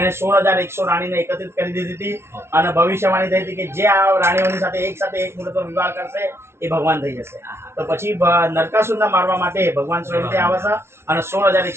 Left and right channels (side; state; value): left; late; 0.12 ms